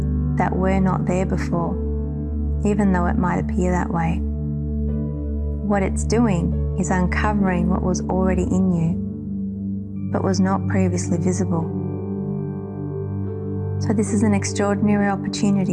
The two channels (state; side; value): identical; both; correlation 1.00